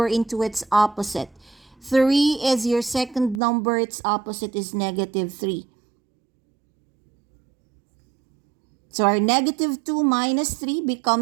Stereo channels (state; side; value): drops out; left; at 3.4 s